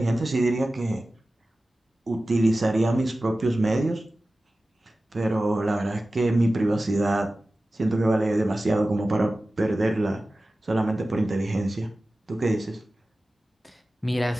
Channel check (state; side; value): normal; both; correlation 0.96